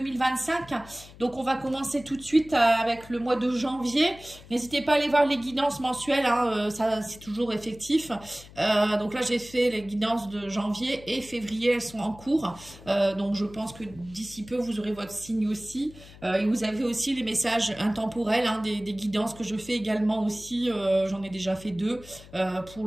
Donc on va commencer tout de suite avec le mois de janvier. N'hésitez pas à aller voir les guidances mensuelles, hein, ça c'est toujours effectif. Donc là j'ai fait les guidances de janvier et février, elles sont en cours. Donc je pense que d'ici peu vous aurez votre signe aussi. Et vous avez aussi les messages intemporels, hein, des guidances que je fais également aussi. J'en ai déjà fait deux pour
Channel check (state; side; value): noise; left; hum, 20 dB below the sound